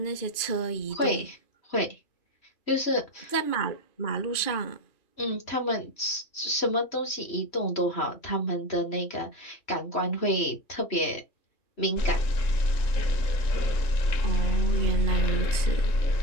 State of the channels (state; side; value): late; right; 3.1 ms